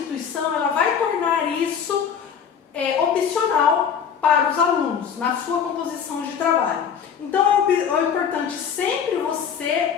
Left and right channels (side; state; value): right; quieter; 7.4 dB